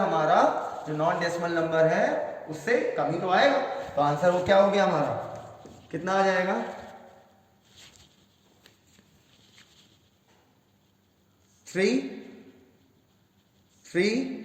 जो नॉन डेसिमल नंबर है उससे कम ही तो आएगा। तो आंसर वो क्या हो गया हमारा, कितना आ जाएगा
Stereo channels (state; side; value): identical; both; correlation 1.00